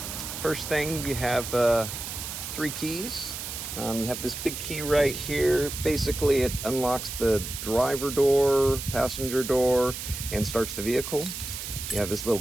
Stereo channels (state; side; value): noise; right; hiss, 7 dB below the sound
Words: First thing, you have 3 keys. You have this big key right here. Basically it unlocks the driver door, passenger door, and starts the vehicle. You have this little